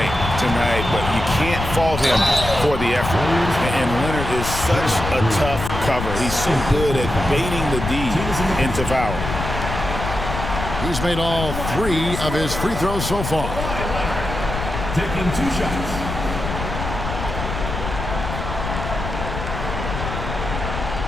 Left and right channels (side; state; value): left; noise; rumble, 5 dB below the sound